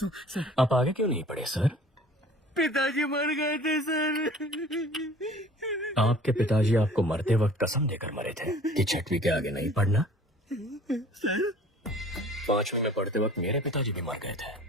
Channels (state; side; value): normal; both; correlation 0.49